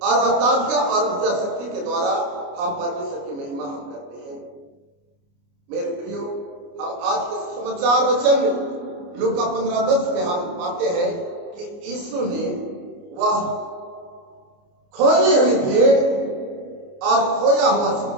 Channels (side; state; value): left; late; 29 ms